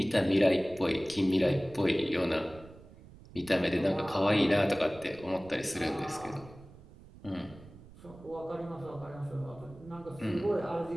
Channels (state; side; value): noise; right; rumble, 20 dB below the sound